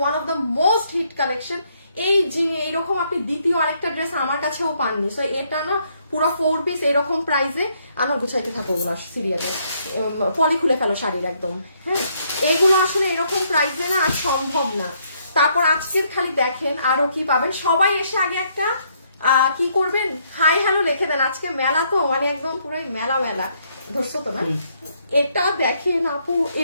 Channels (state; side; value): inverted; both; correlation -0.71